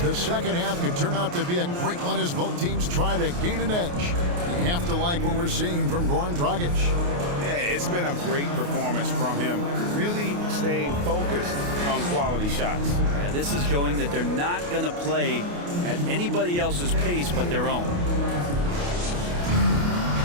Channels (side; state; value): left; late; 28 ms